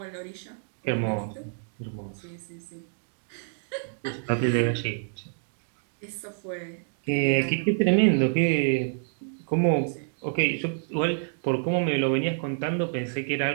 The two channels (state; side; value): silent; left; digital silence